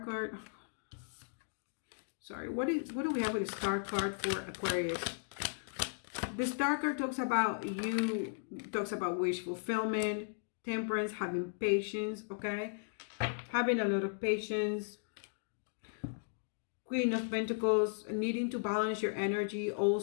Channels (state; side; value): silent; right; digital silence